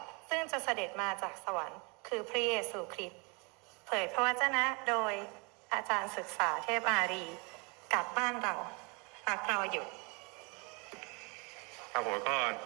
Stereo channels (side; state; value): left; quieter; 30.6 dB